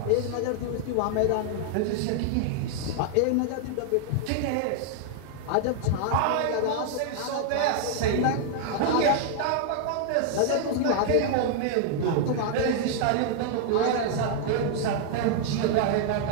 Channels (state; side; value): different; both; correlation -0.01